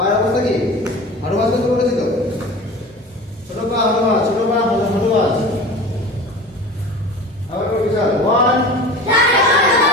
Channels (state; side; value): normal; both; correlation 0.37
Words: অবস্থা কি হাঁটু বাজ করতে বলেছি তো ছোট পা হাঁটু বাজ আবার করবি চল 1